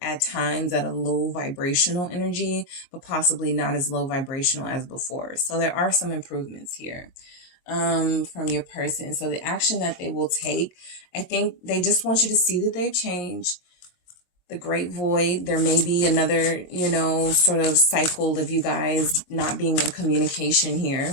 at times at a low vibrational energy, but possibly not as low vibrational as before. So there are some improvements here from your person. So the action that they will take, I think they just want you to see that they've changed. The great void, there may be another, you know, sort of cycle of you guys not being in communication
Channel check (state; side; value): late; right; 22 ms